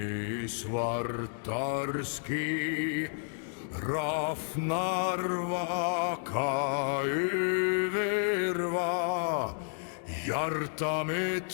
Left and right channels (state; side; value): silent; right; 57 dB below the other